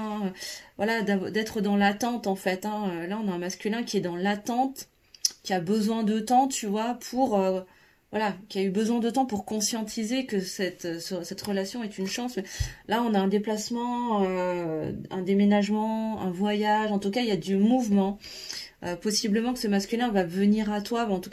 Voilà, d'être dans l'attente, en fait, hein. Là, on a un masculin qui est dans l'attente, qui a besoin de temps, tu vois, pour... voilà, qui a eu besoin de temps pour conscientiser que cette relation est une chance. Mais là, on a un déplacement, un déménagement, un voyage. En tout cas, il y a du mouvement. Possiblement que ce masculin va venir à toi, en tout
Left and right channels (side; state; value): both; identical; correlation 1.00